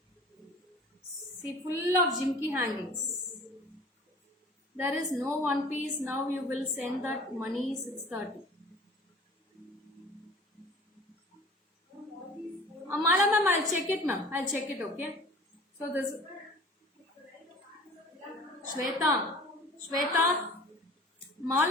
See, full of Jimmy hangings. There is no one piece. Now you will send that money 6:30. Mala ma'am, I'll check it ma'am. I'll check it, okay? So this Shweta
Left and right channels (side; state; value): both; normal; correlation 0.44